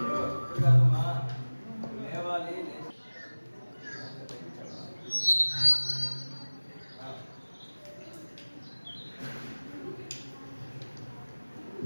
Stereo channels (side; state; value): both; inverted; correlation -1.00